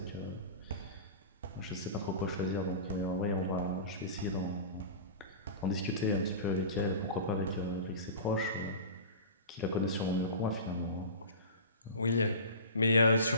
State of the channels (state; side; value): inverted; both; correlation -0.34